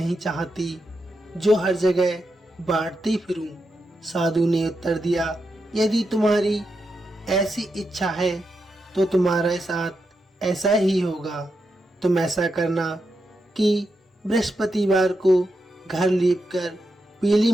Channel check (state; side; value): normal; both; correlation 0.86